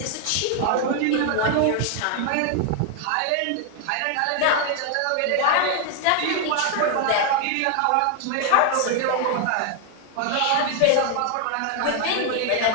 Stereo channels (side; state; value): both; different; correlation 0.00